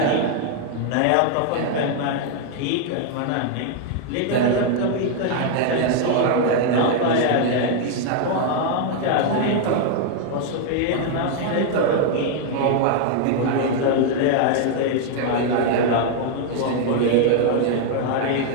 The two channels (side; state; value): both; different; correlation 0.00